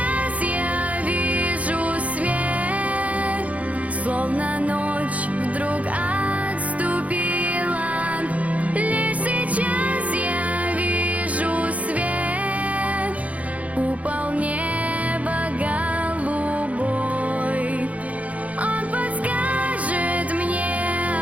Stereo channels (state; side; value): late; left; 0.068 ms